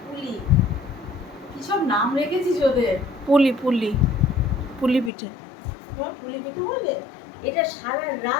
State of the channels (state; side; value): drops out; right; at 5.1 s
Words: পুলি কি সব নাম রেখেছিস ওদের? পুলি পুলি পুলি পিঠে। তোমার পুলি পেতে বলবে? এটা সারা